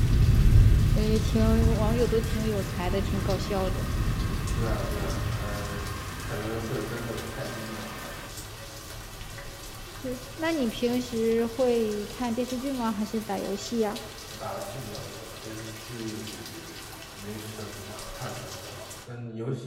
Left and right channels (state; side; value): identical; both; correlation 1.00